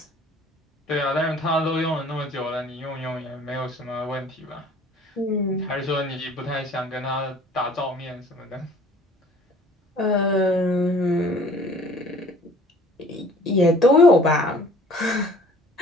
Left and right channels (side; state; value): both; normal; correlation 0.51